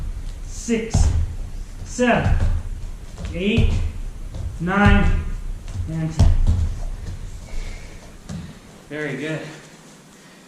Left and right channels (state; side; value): identical; both; correlation 1.00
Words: 6, 7, 8, 9, and 10. Very good.